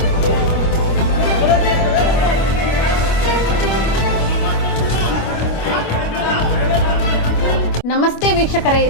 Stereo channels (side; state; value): right; late; 25 ms